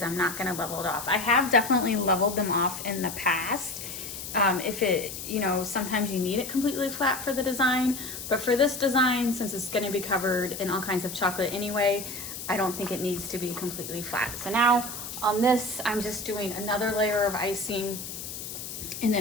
I'm not gonna level it off. I have definitely leveled them off in the past. Sometimes you need it completely flat for the design, but for this design, since it's gonna be covered in all kinds of chocolate anyway, I don't think it needs to be completely flat. So now on this, I'm just doing another layer of icing, and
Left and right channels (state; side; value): noise; left; hiss, 8 dB below the sound